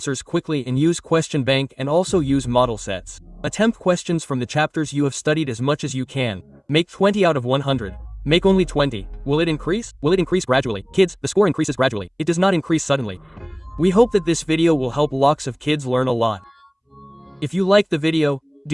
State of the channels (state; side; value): identical; both; correlation 1.00